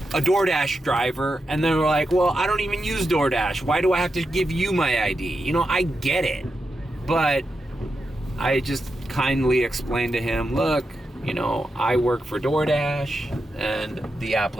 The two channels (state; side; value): normal; both; correlation 0.88